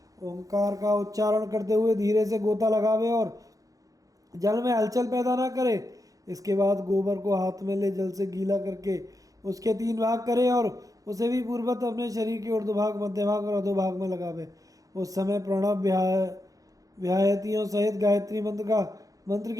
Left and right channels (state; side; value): late; left; 0.17 ms